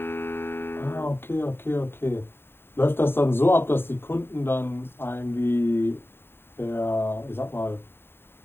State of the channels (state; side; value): late; right; 0.11 ms